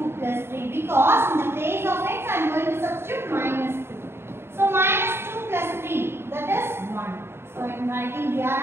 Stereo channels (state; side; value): late; left; 0.12 ms